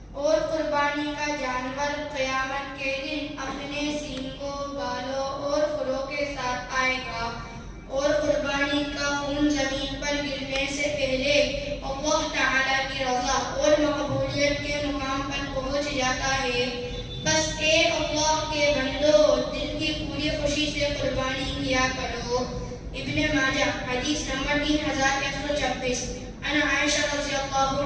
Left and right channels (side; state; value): both; identical; correlation 1.00